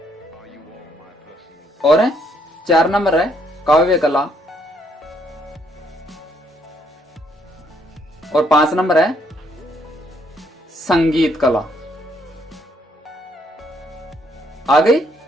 और 4 नंबर है काव्य कला, और 5 नंबर है संगीत कला। आ गई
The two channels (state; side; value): normal; both; correlation 0.70